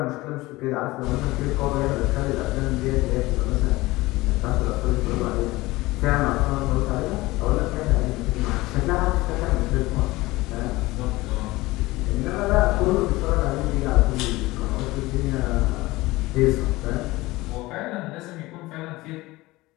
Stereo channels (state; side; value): quieter; right; 19.9 dB